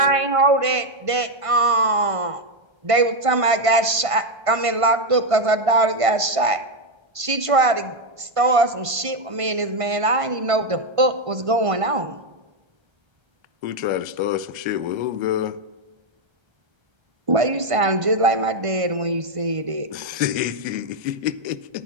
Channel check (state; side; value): late; left; 1.5 ms